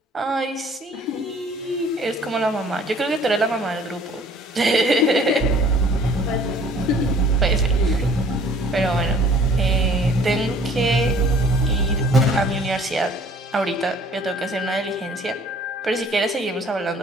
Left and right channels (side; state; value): both; normal; correlation 0.54